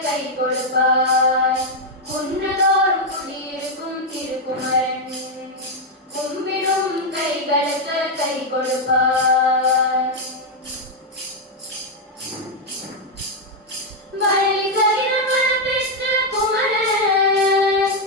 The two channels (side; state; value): both; normal; correlation 0.00